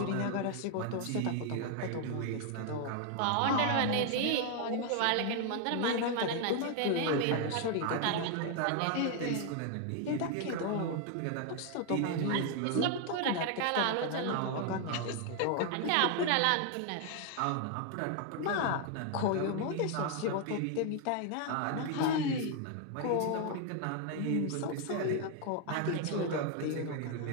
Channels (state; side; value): different; both; correlation 0.00